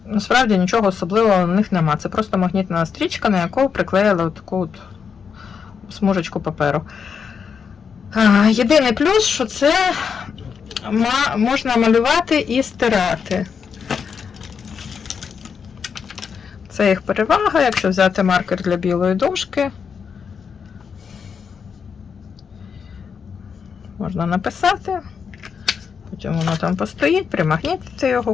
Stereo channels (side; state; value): right; quieter; 6.4 dB